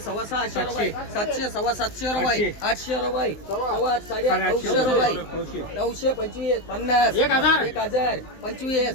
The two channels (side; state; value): right; late; 19 ms